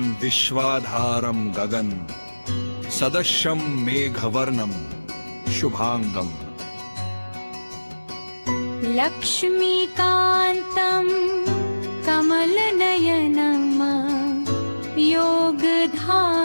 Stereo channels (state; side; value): inverted; both; correlation -1.00